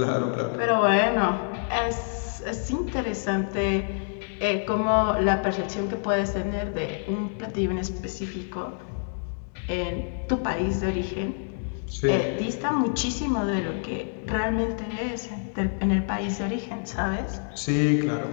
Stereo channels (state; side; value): silent; right; digital silence